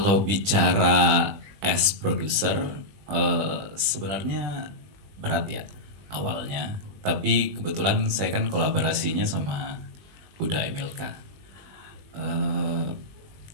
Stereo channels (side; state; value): left; late; 20 ms